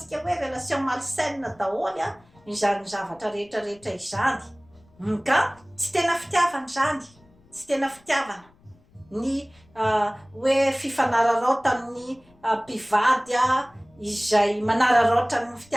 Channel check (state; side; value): noise; left; rumble, 30 dB below the sound